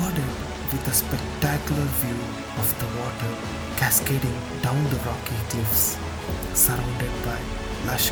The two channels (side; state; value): both; identical; correlation 1.00